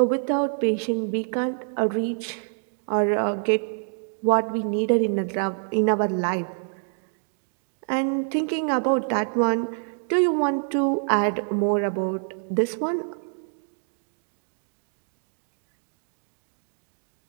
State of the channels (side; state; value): left; silent; 61 dB below the other